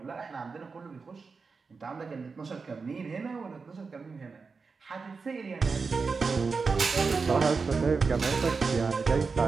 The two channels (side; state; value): left; quieter; 4.7 dB